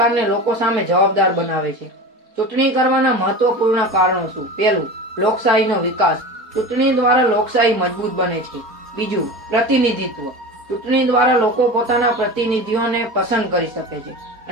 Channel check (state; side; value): late; left; 4.2 ms